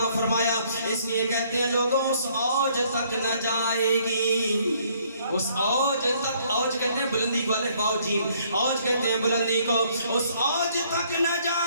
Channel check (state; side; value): inverted; both; correlation -0.64